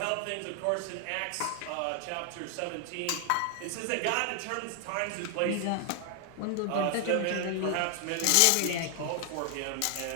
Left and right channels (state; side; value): different; both; correlation 0.00